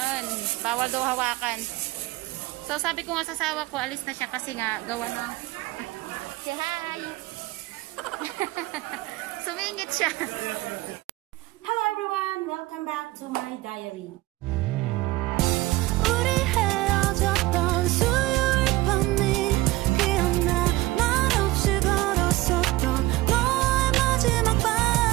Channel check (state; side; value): quieter; left; 18.9 dB